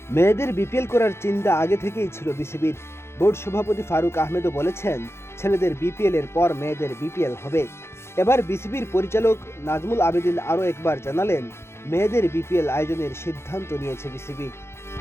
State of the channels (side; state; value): right; late; 0.12 ms